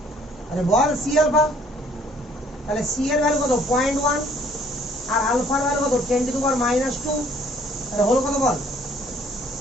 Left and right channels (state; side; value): normal; both; correlation 0.60